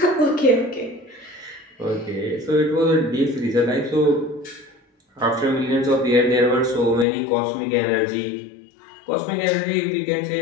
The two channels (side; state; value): right; drops out; at 7.1 s